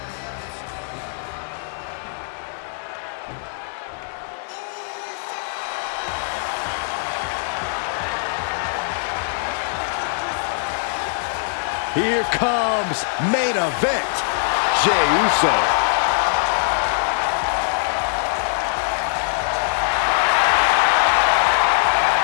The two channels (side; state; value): right; silent; digital silence